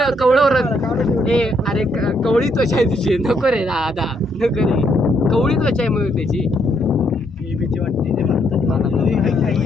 ए अरे कवळी त्वचा आहे तिची नको रे दादा नको रे कवळी त्वचा आहे मग त्याची भीती वाटते ते म्हणतात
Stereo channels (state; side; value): normal; both; correlation 0.73